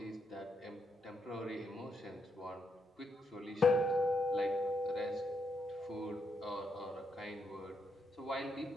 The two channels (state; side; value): normal; both; correlation 0.79